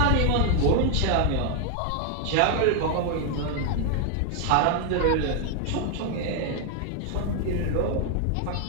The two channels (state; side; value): different; both; correlation 0.00